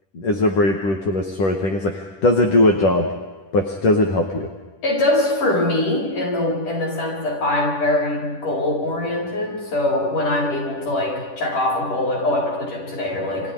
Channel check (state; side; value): late; right; 10 ms